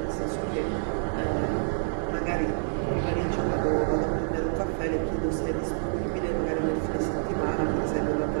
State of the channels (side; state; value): left; silent; 57 dB below the other